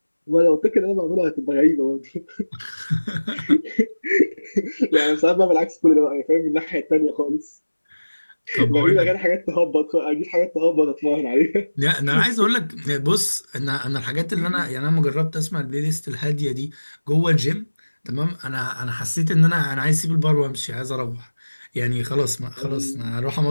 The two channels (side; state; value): both; inverted; correlation -1.00